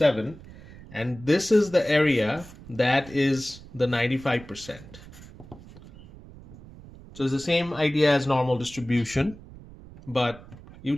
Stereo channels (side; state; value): right; noise; rumble, 19 dB below the sound